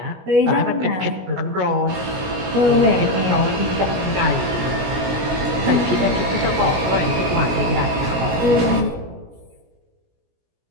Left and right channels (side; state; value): left; late; 17 ms